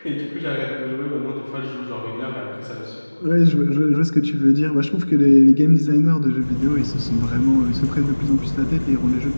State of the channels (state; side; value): inverted; both; correlation -1.00